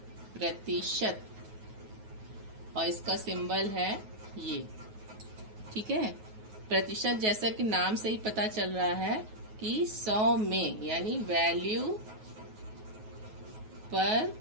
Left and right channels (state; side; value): late; left; 9.3 ms